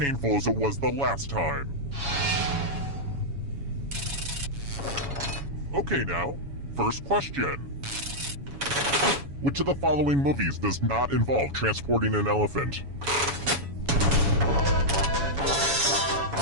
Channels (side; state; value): left; late; 7.1 ms